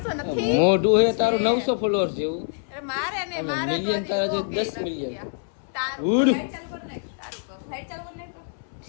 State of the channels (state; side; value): silent; right; digital silence